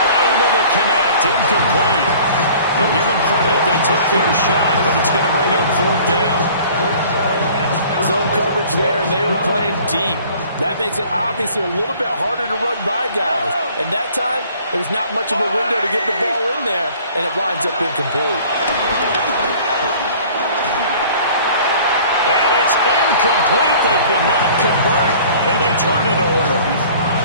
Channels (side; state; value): both; inverted; correlation -0.50